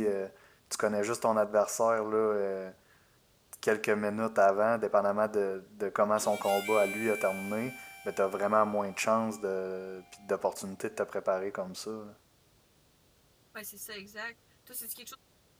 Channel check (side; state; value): both; identical; correlation 1.00